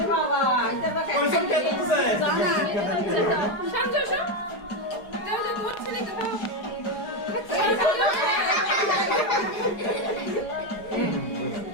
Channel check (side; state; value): right; late; 4.8 ms